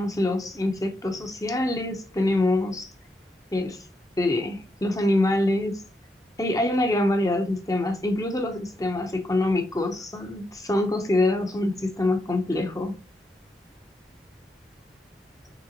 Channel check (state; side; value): normal; both; correlation 0.82